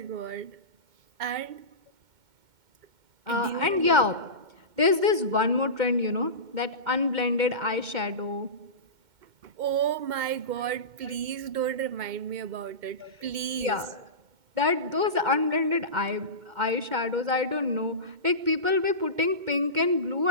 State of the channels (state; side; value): late; left; 2.1 ms